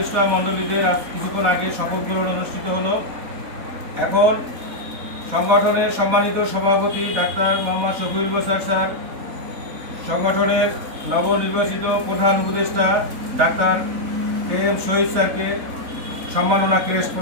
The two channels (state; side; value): late; left; 4.0 ms